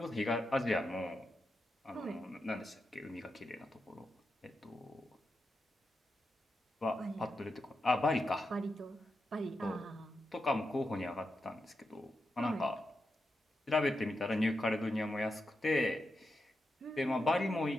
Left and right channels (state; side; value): normal; both; correlation 0.88